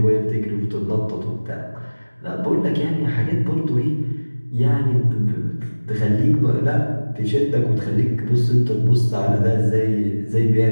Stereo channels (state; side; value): inverted; both; correlation -1.00